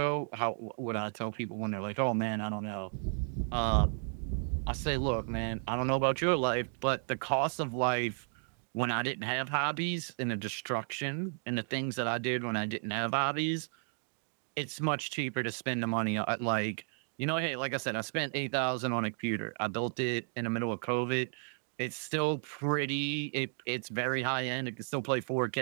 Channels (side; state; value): left; silent; 55 dB below the other